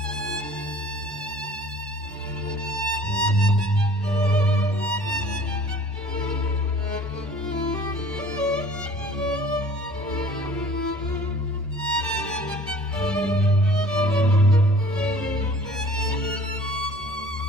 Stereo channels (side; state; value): both; normal; correlation 0.49